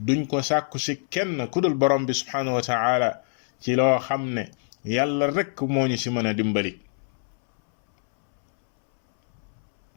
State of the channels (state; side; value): silent; right; 62 dB below the other